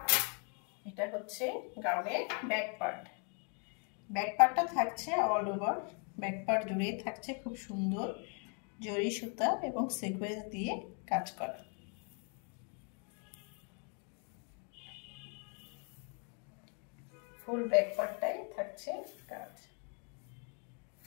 এটা হচ্ছে গাউনের ব্যাক পার্ট। ব্যাক পার্টটা থাকছে অল ওভার, ব্যাক পার্ট জুড়েই থাকছে খুব সুন্দর জরি সুতা এবং সিকোয়েন্স দিয়ে কাজ করা। ফুল ব্যাক পার্টটাই থাকছে কাজ।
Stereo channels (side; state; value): right; quieter; 38.8 dB